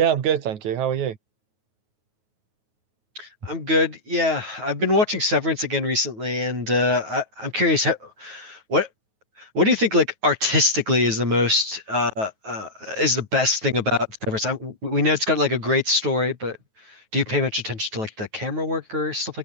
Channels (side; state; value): left; late; 9.3 ms